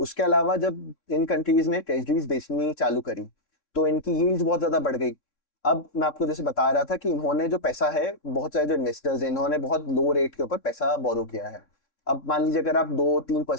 अलावा जब इन कंट्रीज ने ट्रेजरीज बेचनी चालू करी तो इनकी यील्ड्स बहुत ज्यादा बढ़ गई। अब मैं आपको जैसे बता रहा था कि इन्होंने जो पैसा है, बहुत सारे जो इन्वेस्टर्स हैं, इन्होंने बहुत लो रेट के ऊपर पैसा बोरो किया है। अब मान लीजिए अगर आप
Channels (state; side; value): late; right; 3.6 ms